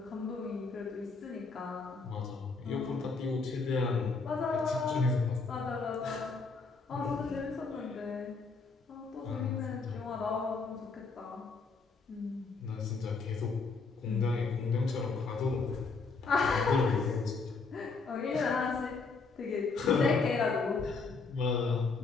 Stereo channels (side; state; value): right; quieter; 4.3 dB